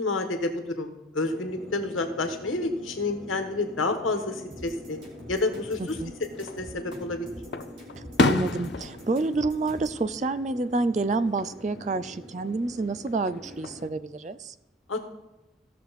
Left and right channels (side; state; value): both; normal; correlation 0.41